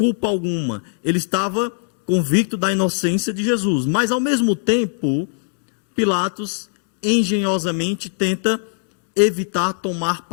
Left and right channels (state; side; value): silent; right; digital silence